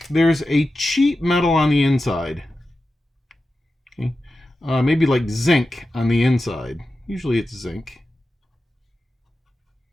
there's a cheap metal on the inside. Okay, maybe like zinc on the inside. Usually it's zinc.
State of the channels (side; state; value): both; normal; correlation 0.92